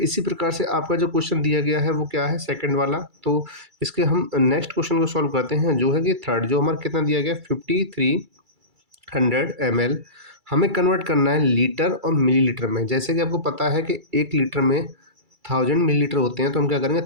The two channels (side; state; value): left; late; 2.3 ms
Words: प्रकार से आपका जो क्वेश्चन दिया गया है वो क्या है, सेकंड वाला। तो इसके हम नेक्स्ट क्वेश्चन को सॉल्व करते हैं, जो है कि थर्ड, जो हमारा कितना दिया गया, 5300 ml हमें कन्वर्ट करना है लीटर और मिलीलीटर में। जैसे कि आपको पता है कि 1 लीटर में 1000 मिलीलीटर होते हैं, तो हम क्या करेंगे,